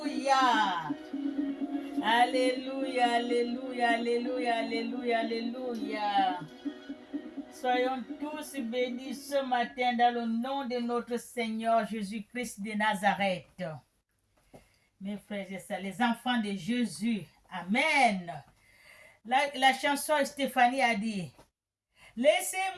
Alléluia, alléluia, alléluia, alléluia, alléluia. Soyons tous bénis ce matin dans le nom de notre Seigneur Jésus-Christ de Nazareth. Mes frères et sœurs, les enfants de Jésus. Amen. La chanson Stéphanie a dit,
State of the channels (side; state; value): both; identical; correlation 1.00